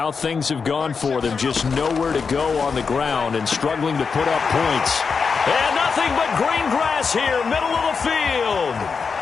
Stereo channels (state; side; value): quieter; right; 5.4 dB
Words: things have gone for them. Just nowhere to go on the ground and struggling to put up points. And nothing but green grass here, middle of the field.